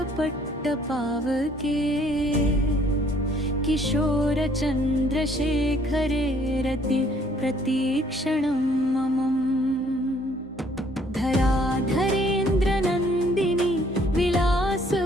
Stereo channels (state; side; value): normal; both; correlation 0.62